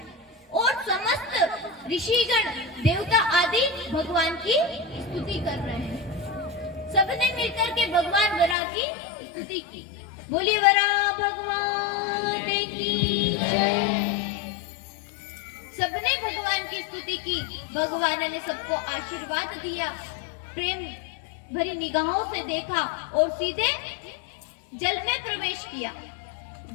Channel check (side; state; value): right; drops out; at 8.6 s